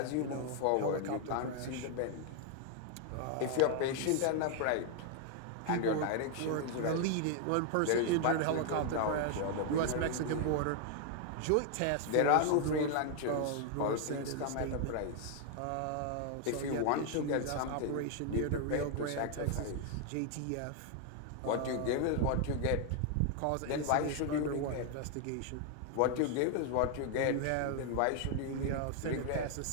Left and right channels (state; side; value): different; both; correlation 0.00